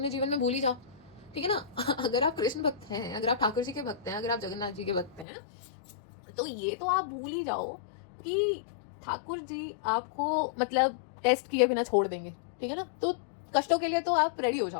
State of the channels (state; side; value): drops out; right; at 5.2 s